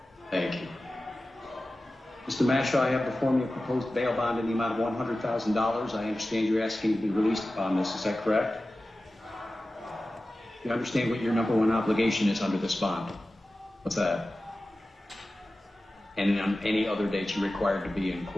Thank you. Mr. Mashaw, I have before me a proposed bail bond in the amount of $100,000. I understand you're asking to be released upon this. Is that correct? You understand what your number one obligation is under this bond? What's that? And on any other date you're required to be in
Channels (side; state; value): both; normal; correlation 0.95